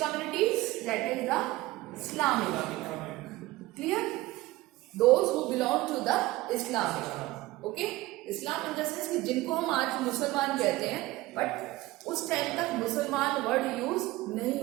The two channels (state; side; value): quieter; left; 18.7 dB